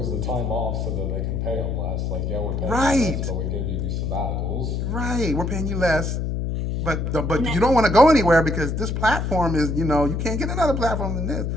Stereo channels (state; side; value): noise; left; hum, 1 dB below the sound